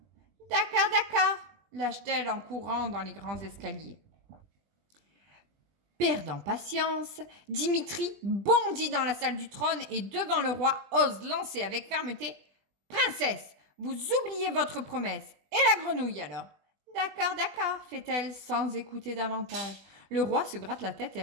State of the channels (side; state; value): left; late; 20 ms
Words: D'accord, lâche-t-elle en courant dans les grands escaliers. Perdant patience, Dimitri bondit dans la salle du trône et devant le roi ose lancer avec fermeté « Princesse, vous oubliez votre promesse. Et la grenouille alors ?»« D'accord, fait-elle sans écouter davantage. Le roi se gratte la tête et